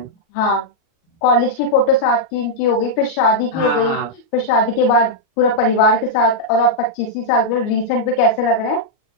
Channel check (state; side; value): late; right; 38 ms